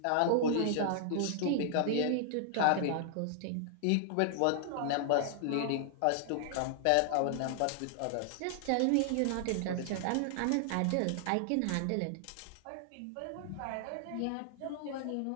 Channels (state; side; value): different; both; correlation -0.01